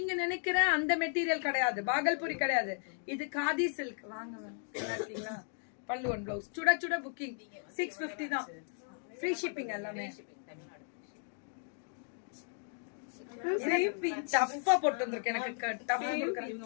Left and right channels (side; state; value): right; silent; 54 dB below the other